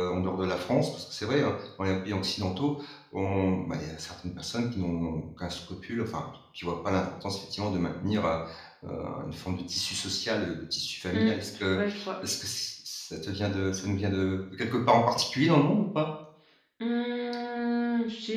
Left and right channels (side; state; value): both; identical; correlation 1.00